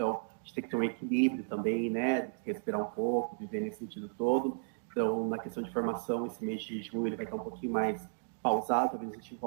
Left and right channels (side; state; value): left; silent; digital silence